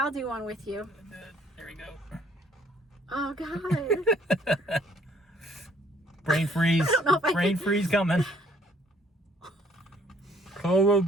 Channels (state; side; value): normal; both; correlation 0.61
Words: do one with you. There we go. Oh, God. Brain freeze. I don't know if I Brain can- freeze coming.